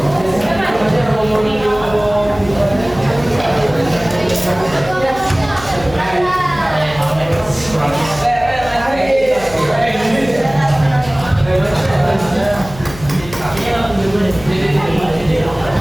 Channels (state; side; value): noise; left; hum, 16 dB below the sound